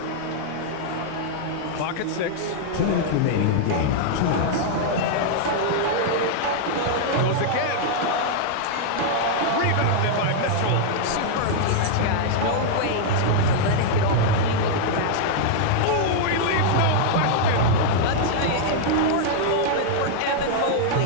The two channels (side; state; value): both; different; correlation -0.01